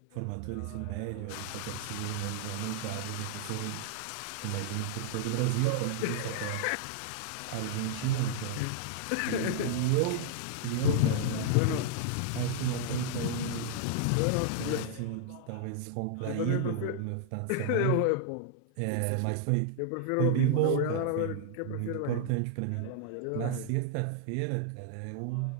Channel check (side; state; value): both; different; correlation -0.01